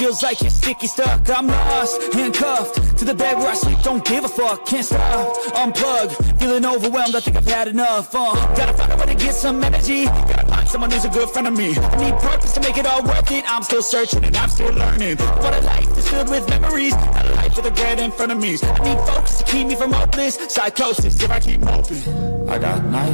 like you're sticky stuck. I'm lost, handcuffed to the bed where I sleep, don't give a fuck, can't stop, unplug, feeling overwhelmed, I think I've had enough. Gotta find a way to get some energy, gotta find someone who's a good friend of me. I need purpose to make it all worth it, I'm still searching and I'm still learning. What a life is filled with memories, not a life with regret in front of me. I need focus to keep me from hopeless psychosis if I keep hoping. I got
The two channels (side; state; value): both; inverted; correlation -1.00